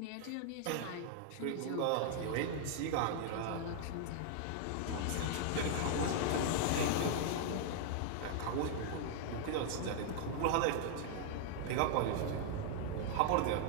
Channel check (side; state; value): both; different; correlation 0.00